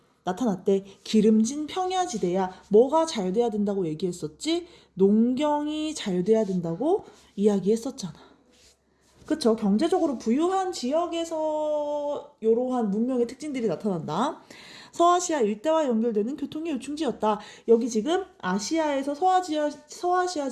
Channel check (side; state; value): both; identical; correlation 1.00